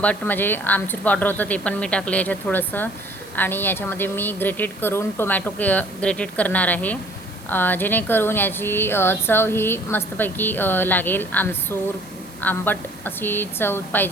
म्हणजे आमचूर पावडर होतं ते पण मी टाकले याच्यात थोडंसं। आणि याच्यामध्ये मी ग्रेटेड करून टोमॅटो ग्रेटेड करणार आहे, जेणेकरून याची चव ही मस्तपैकी लागेल। आमसूर आंबट अशी चव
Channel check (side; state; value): right; noise; hiss, 22 dB below the sound